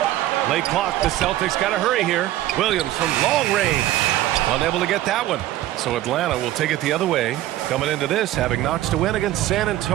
Late clock, the Celtics got to hurry here. Williams from long range. Unable to get that one. So Atlanta will take it the other way. Coming into this, having knocks to win against San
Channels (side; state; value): left; quieter; 14.5 dB